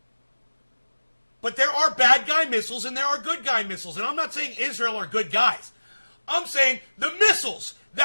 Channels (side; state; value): both; inverted; correlation -1.00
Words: But there are bad guy missiles and there are good guy missiles. And I'm not saying Israel are good guys. I'm saying the missiles